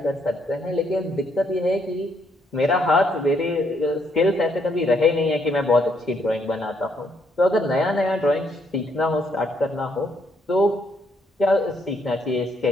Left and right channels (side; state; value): both; normal; correlation 0.72